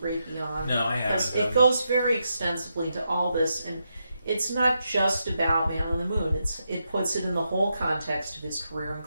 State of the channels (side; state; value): both; inverted; correlation -0.84